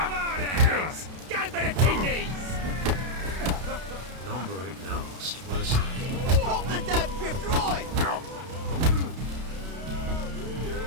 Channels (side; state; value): left; late; 32 ms